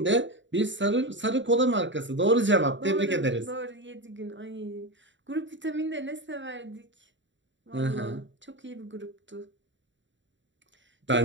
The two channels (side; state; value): left; late; 0.54 ms